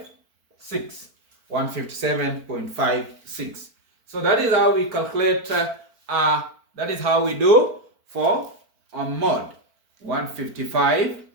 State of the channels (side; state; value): left; late; 4.5 ms